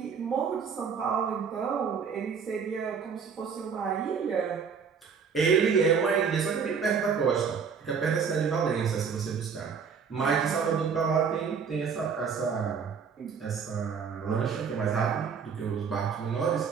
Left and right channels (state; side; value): quieter; left; 6.2 dB